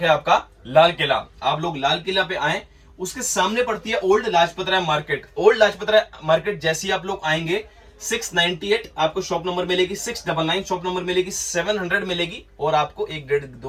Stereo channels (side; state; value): both; identical; correlation 1.00